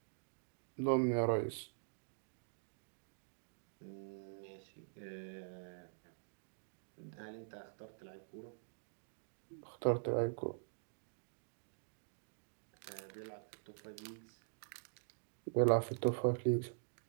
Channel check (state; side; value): silent; left; digital silence